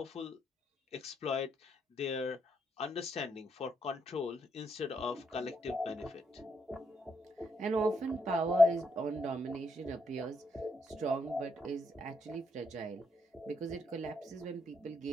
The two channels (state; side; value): normal; both; correlation 0.77